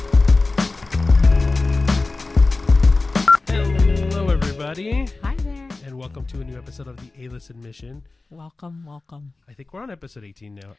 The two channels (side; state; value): right; quieter; 3.5 dB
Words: Hello, everybody. Hi there. And welcome to a new episode of the A-List Admission. Welcome. I think we're on episode 18 now.